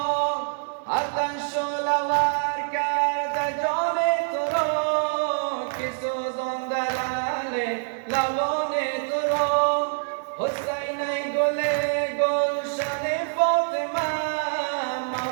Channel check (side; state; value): left; silent; digital silence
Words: آتش شعله‌ور کرده جان تو را که سوزانده لعل لبان تو را. حسین ای گل گلشن فاطمه